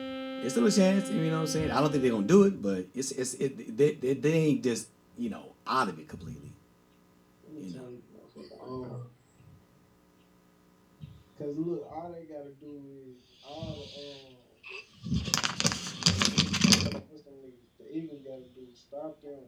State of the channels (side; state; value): both; identical; correlation 1.00